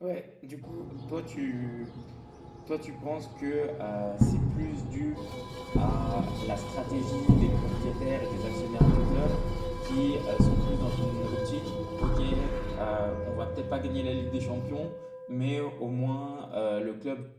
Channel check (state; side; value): identical; both; correlation 1.00